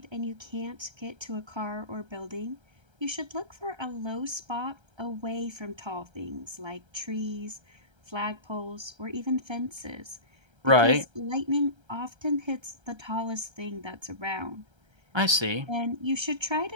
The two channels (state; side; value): late; left; 1.3 ms